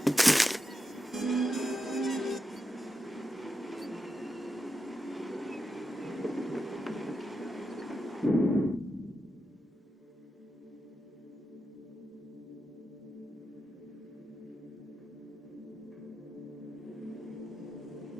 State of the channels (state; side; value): normal; both; correlation 0.88